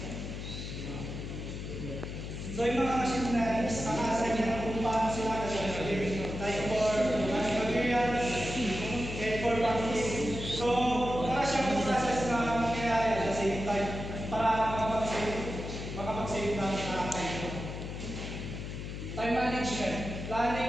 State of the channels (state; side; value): noise; left; hum, 7 dB below the sound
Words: So, yung mga machine na yun is naka-assign kung paano sila gagawin. Like for materials and for packing. So, para siyang process na mangyayari at the same time para makapag-save ng time. Time management.